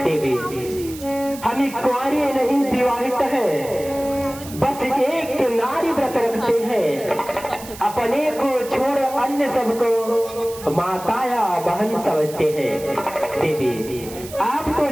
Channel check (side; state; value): right; noise; hiss, 15 dB below the sound